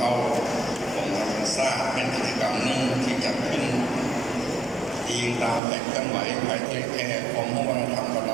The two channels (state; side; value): drops out; left; at 5.6 s